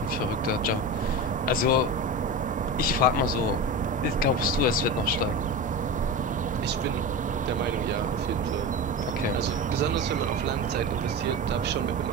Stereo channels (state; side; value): normal; both; correlation 0.25